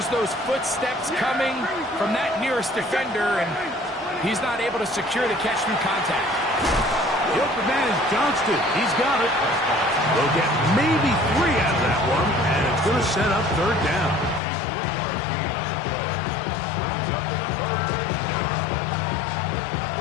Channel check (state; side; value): drops out; right; at 14.4 s